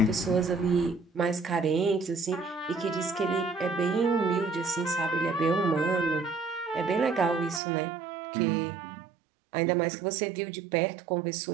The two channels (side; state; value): left; drops out; at 7.6 s